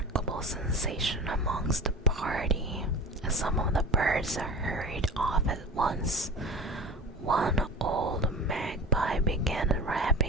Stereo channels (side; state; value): both; normal; correlation 0.33